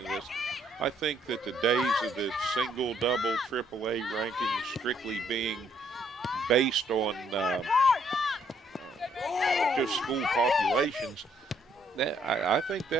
of this, I think that the days of the single, double, AAA rankings strictly being based on just school populations, I think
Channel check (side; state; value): both; normal; correlation 0.68